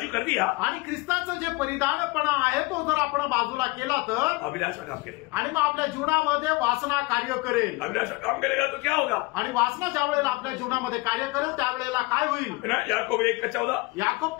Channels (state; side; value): quieter; right; 23.6 dB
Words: कर दिया, आणि ख्रिस्ताचं जे परिधानपणा आहे तो जर आपण बाजूला केला तर अभिलाषा काम करेगा. आणि मग आपल्या जीवनामध्ये वासना कार्य करेल. अभिलाषा काम करेगा तो क्या होगा? आणि वासना ज्या वेळेला आपल्या जीवनामध्ये कार्य करेल त्यावेळेला काय होईल? याकूब 1:14, याकूब